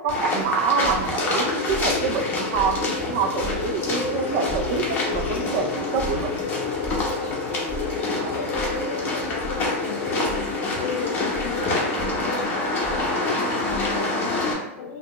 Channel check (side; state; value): both; normal; correlation 0.08